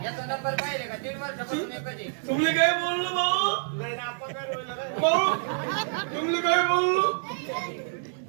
तुम्ही काय बोललो भाऊ. नाही ना आपा कर भाऊ तुम्ही काय बोललो.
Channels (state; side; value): silent; left; digital silence